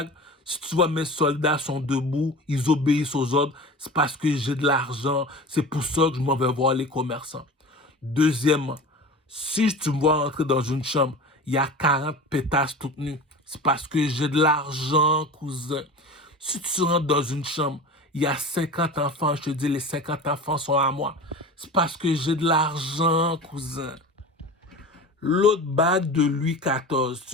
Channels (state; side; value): normal; both; correlation 0.34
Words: si tu vois mes soldats sont debout, ils obéissent aux ordres, c'est parce que j'ai de l'argent, c'est pour ça que je m'en vais voir les commerçants. Deuxièmement, si tu me vois entrer dans une chambre, il y a 40 pétasses toutes nues, c'est parce que j'ai de l'argent, cousin. Si tu rentres dans une chambre, il y a 50 enfants, je te dis les 50 enfants sont à moi, c'est parce que j'ai de l'argent, cousin. L'autre bague de Louis XIV,